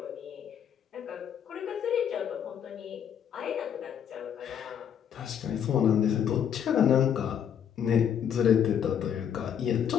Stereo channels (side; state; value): right; quieter; 8.7 dB